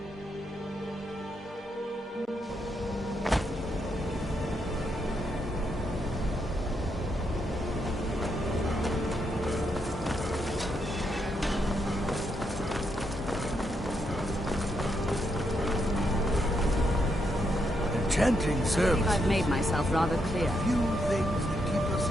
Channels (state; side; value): normal; both; correlation 0.79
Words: Enchanting service. I've made myself rather clear. Few things that keep us